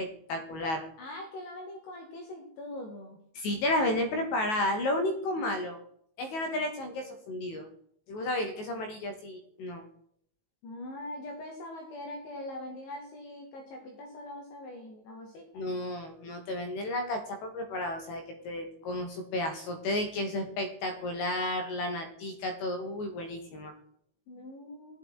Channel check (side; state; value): right; late; 19 ms